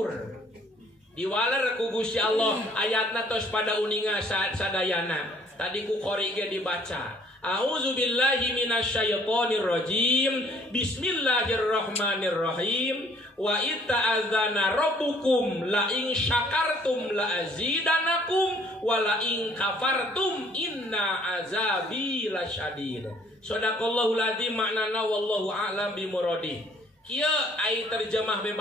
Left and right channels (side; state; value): both; normal; correlation 0.60